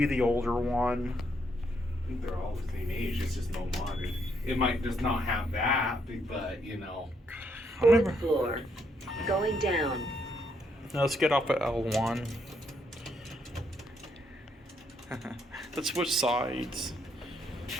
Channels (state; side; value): normal; both; correlation 0.74